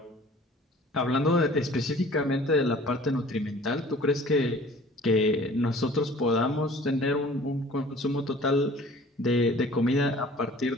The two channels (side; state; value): both; normal; correlation 0.49